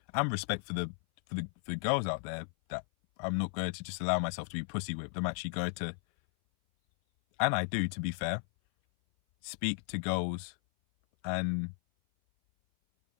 and respect for the girls out there, that I'm not going to just allow myself to be pussy whipped. I'm actually going to, and I do, to be fair, speak to girls and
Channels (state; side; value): silent; right; 55 dB below the other